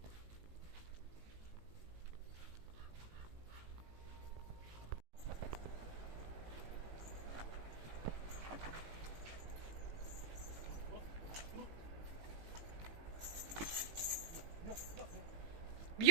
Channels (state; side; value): late; left; 18 ms